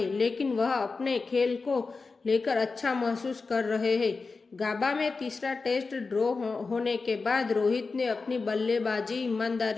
लेकिन वह अपने खेल को लेकर अच्छा महसूस कर रहे हैं। गाबा में तीसरा टेस्ट ड्रॉ होने के बाद रोहित ने अपनी बल्लेबाजी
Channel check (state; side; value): quieter; right; 4.2 dB